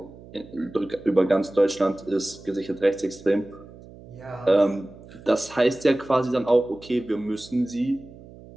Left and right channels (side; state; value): right; noise; hum, 19 dB below the sound